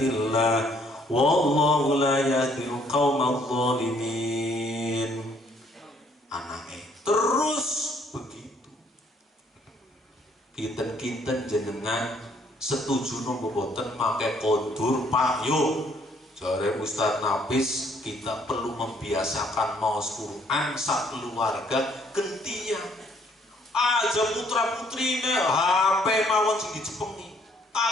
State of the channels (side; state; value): both; normal; correlation 0.65